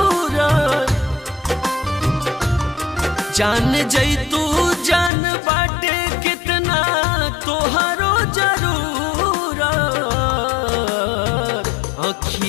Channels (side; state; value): right; drops out; at 5.1 s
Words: जान जैतू जान बाटे कितना तोहरो जरूरत।